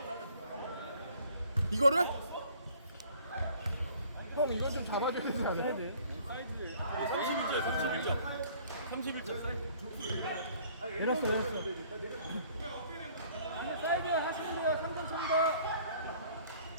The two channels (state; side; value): inverted; both; correlation -0.56